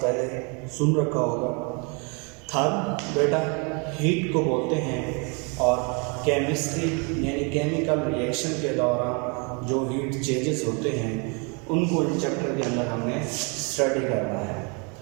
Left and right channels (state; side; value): quieter; left; 33.4 dB